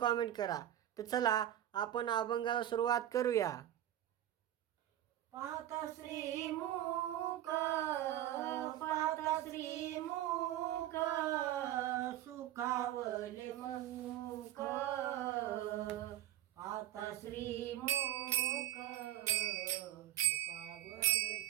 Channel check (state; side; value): quieter; left; 12.7 dB